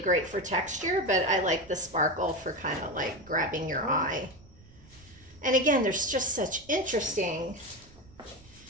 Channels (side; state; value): right; noise; rumble, 24 dB below the sound